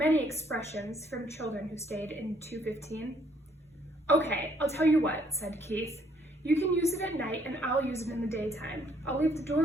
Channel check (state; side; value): normal; both; correlation 0.66